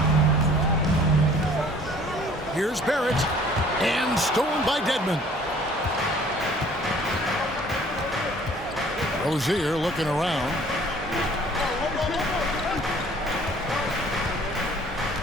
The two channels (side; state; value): both; normal; correlation 0.54